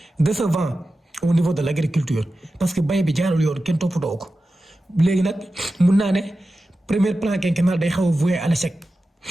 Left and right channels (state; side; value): normal; both; correlation 0.93